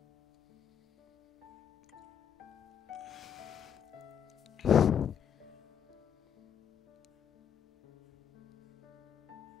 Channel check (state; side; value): quieter; right; 8.6 dB